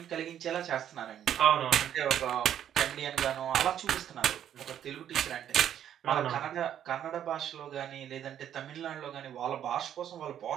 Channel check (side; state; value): left; quieter; 10.1 dB